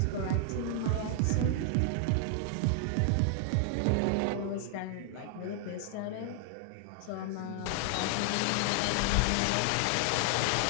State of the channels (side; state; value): both; different; correlation 0.00